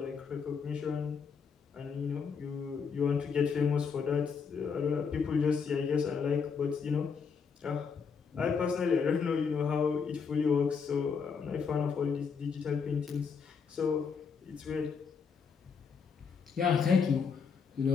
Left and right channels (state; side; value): quieter; right; 6.0 dB